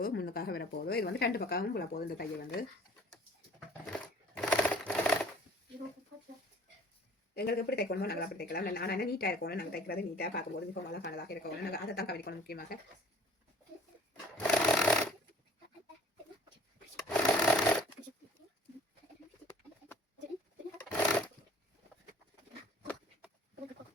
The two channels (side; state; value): both; normal; correlation 0.50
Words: முன்னுக்காக வரப்போதோ இது வந்து 2 பக்கமும் போட போதும். இந்த தையல் வந்து எங்களுக்கு எப்படி தைக்கணுமோ நாங்கள் அப்படி தைக்கலாம். ஆனால் என்ன நீட்டாக இருக்கணும். நாங்கள் தைக்கிறது நீட்டாக பார்க்கும்போது மிகவும் அழகானதாக இருக்கணும். நாங்கள் அதை தான் கவனிக்கணும் முக்கியமாக.